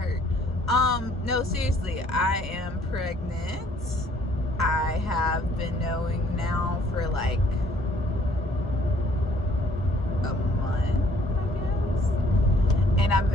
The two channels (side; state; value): both; normal; correlation 0.61